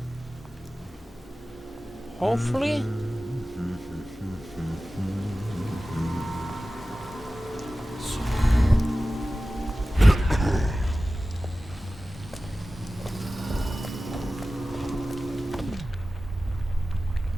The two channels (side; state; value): both; normal; correlation 0.96